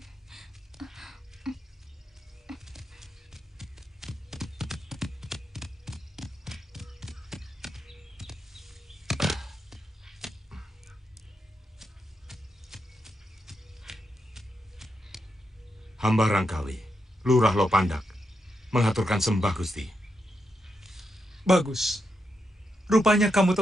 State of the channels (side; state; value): both; normal; correlation 0.84